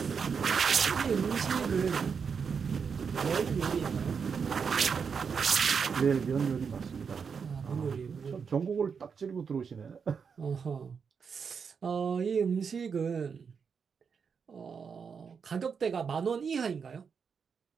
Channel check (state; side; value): quieter; left; 6.1 dB